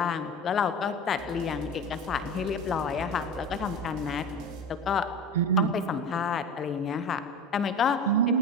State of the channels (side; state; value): both; normal; correlation 0.30